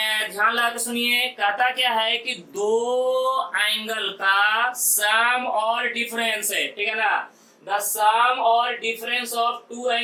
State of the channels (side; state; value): both; identical; correlation 1.00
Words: लगा के सुनिए, कहता क्या है कि दो एंगल का सम और डिफरेंस है, ठीक है ना। द सम और difference of two